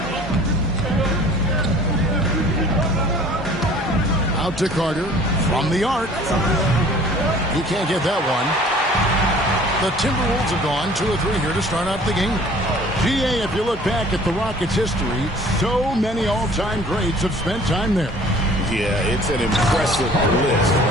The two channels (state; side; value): normal; both; correlation 0.50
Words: Out to Carter from the arc. He can't get that one. The Timberwolves have gone 2 of 3 here to start out the game. GA, if you look back at the Rockets' history, so many all-time greats have spent time there. Yeah, it's an impressive list,